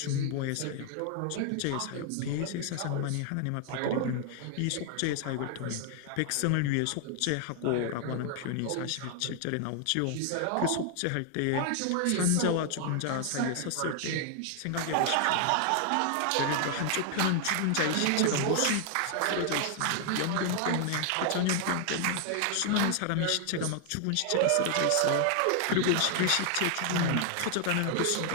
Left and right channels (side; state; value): both; different; correlation 0.00